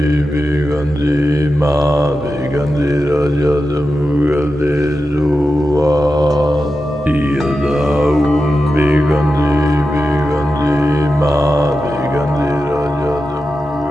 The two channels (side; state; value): both; normal; correlation 0.91